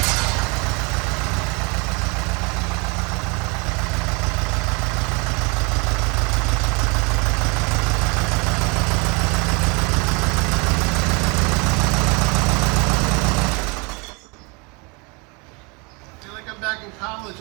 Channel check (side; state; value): left; quieter; 30.3 dB